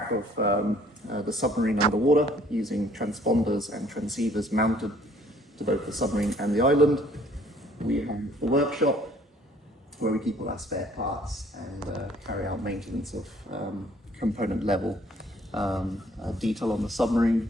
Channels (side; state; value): both; normal; correlation 0.59